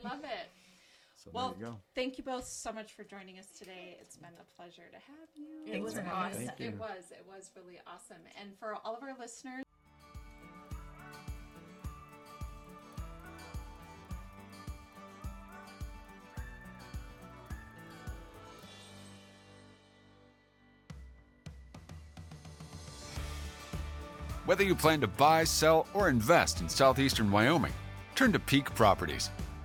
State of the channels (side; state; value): both; identical; correlation 1.00